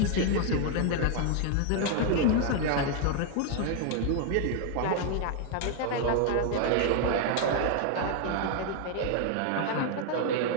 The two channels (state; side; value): different; both; correlation 0.00